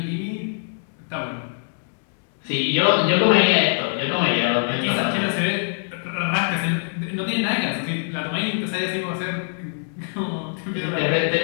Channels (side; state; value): right; silent; digital silence